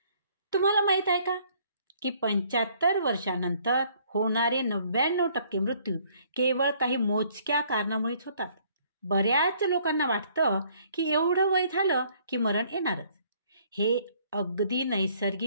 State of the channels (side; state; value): both; inverted; correlation -0.62